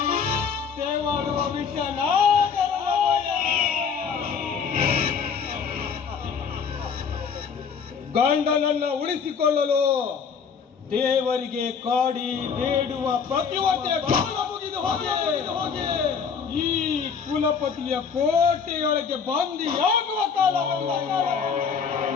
ತೇವಾಡುವ ವಿಷನಾಗರವಯ. ಗಂಡನನ್ನ ಉಳಿಸಿಕೊಳ್ಳಲು ದೇವರಿಗೆ ಕಾಡಿ ಬೇಡುವ ಪ್ರತಿವರ್ತೆಯ ಕಾಲ ಮುಗಿದು ಹೋಗಿ ಈ ಕುಲಪತಿಯ ಕೋಟೆಯೊಳಗೆ ಬಂದಿಯಾಗುವ ಕಾಲ.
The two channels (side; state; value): right; quieter; 6.3 dB